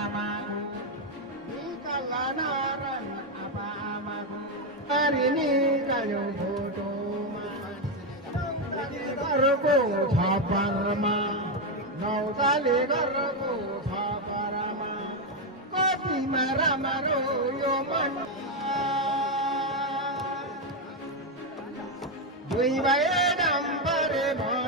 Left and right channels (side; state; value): both; normal; correlation 0.06